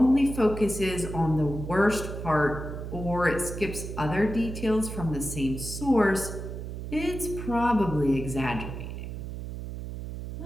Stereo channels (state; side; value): noise; right; hum, 7 dB below the sound